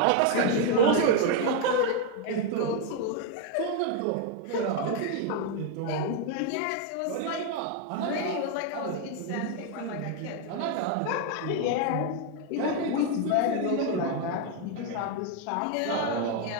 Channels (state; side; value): different; both; correlation 0.01